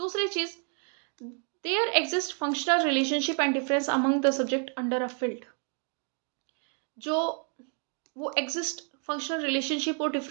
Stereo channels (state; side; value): quieter; left; 39.5 dB